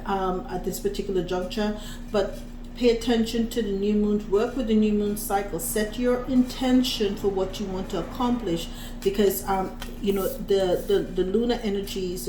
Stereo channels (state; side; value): identical; both; correlation 1.00